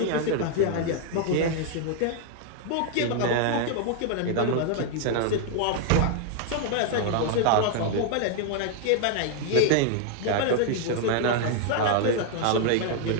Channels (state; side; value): different; both; correlation 0.00